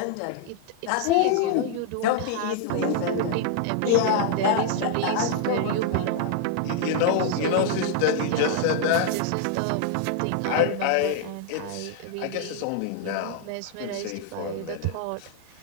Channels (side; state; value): both; different; correlation 0.00